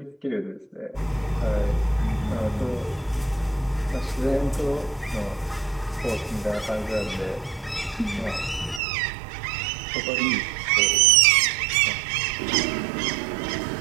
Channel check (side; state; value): left; drops out; at 8.8 s